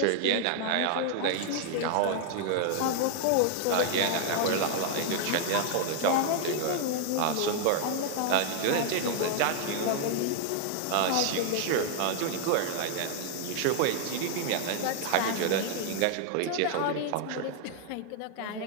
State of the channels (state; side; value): different; both; correlation 0.00